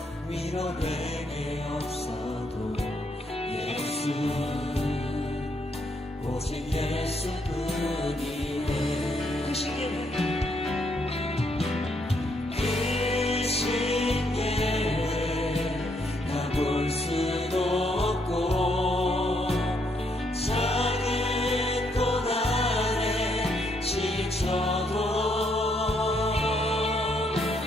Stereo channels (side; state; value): both; normal; correlation 0.74